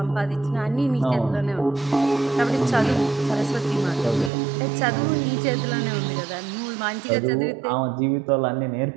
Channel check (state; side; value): drops out; left; at 4.3 s